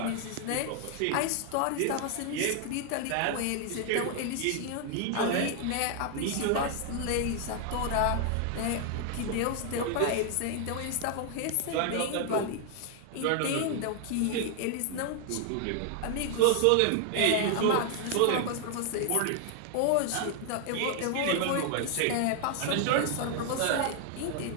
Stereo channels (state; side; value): different; both; correlation 0.00